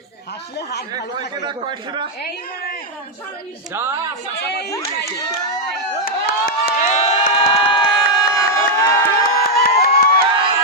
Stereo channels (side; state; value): both; normal; correlation -0.02